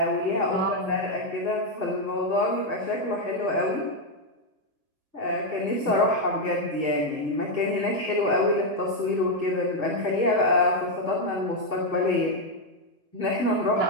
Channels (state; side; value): late; left; 1.5 ms